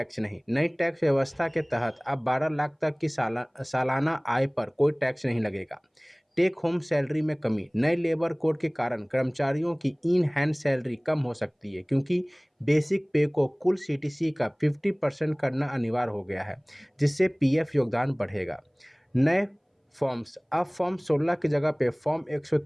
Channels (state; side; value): identical; both; correlation 1.00